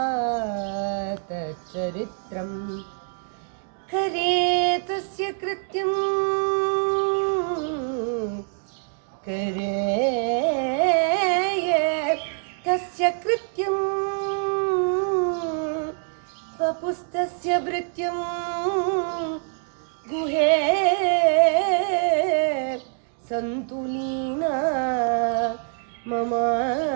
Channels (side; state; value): left; silent; 62 dB below the other